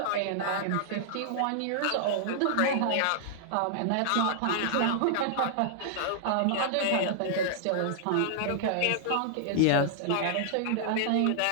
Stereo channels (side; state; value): both; different; correlation -0.01